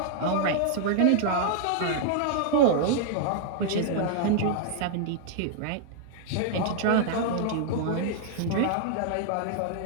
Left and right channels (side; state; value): both; different; correlation -0.01